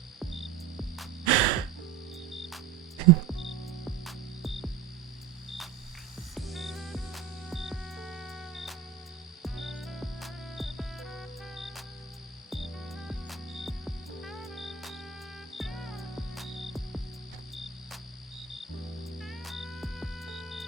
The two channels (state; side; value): quieter; left; 7.5 dB